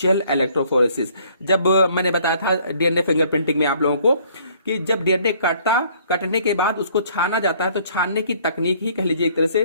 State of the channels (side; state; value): both; inverted; correlation -0.60